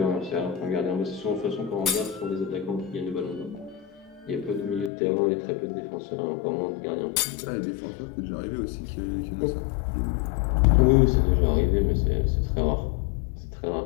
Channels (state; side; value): drops out; right; at 4.9 s